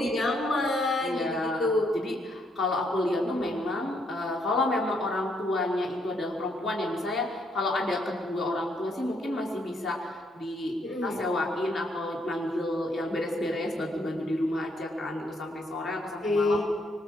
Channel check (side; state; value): both; normal; correlation 0.73